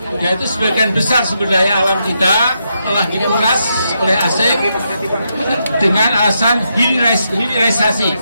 yaitu sebagian besar sumber daya alam kita telah dikuras oleh asing dengan alasan hilirisasi.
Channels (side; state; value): both; inverted; correlation -0.81